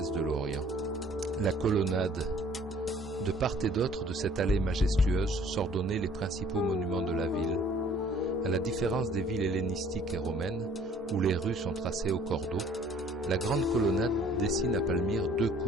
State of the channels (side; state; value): both; normal; correlation 0.56